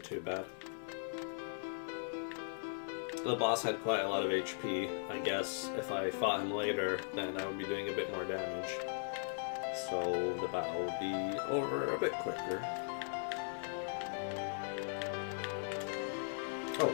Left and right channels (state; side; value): silent; right; 52 dB below the other